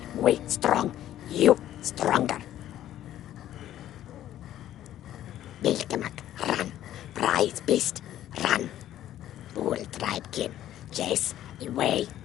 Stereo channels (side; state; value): right; quieter; 12.4 dB